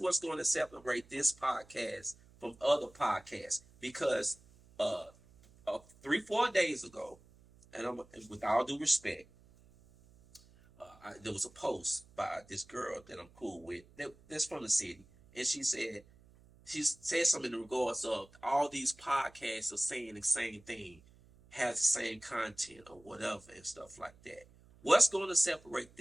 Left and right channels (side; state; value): right; noise; hum, 26 dB below the sound